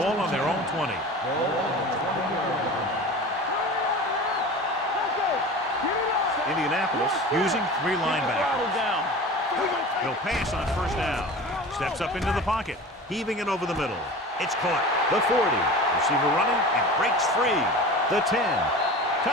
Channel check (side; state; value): both; normal; correlation 0.35